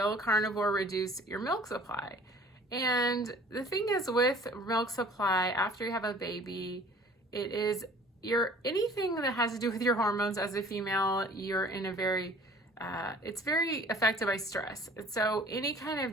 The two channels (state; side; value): normal; both; correlation 0.49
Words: carnivore reduce your milk supply? And the thing is with milk supply, after you have a baby, it is anything that has to do with your hormones as a female, you're in a very, it's very affected by stress. And so any kind